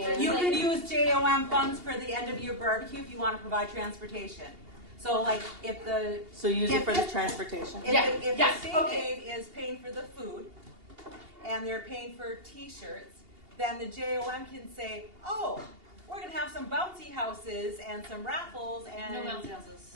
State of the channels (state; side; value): late; left; 2.8 ms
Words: You could use JOM funds for the end of your barbecue if you want to provide transportation. So like if the So use it for the transportation. if Yeah, the state okay. aid is paying for the food and they're paying for T-shirts, then the JOM can say, oh, we're gonna have some bouncy houses and some raffles and No bouncy